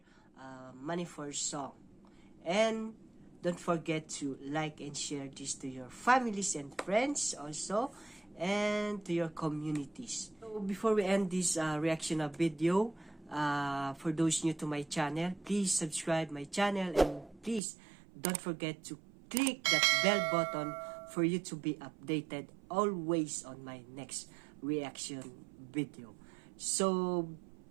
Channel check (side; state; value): left; drops out; at 17.6 s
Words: money for song. And don't forget to like and share this to your families and friends also, and to your communities. So before we end this reaction of video, for those new to my channel, please subscribe my channel, and please don't forget to click that bell button for you to be updated always on my next reaction video. So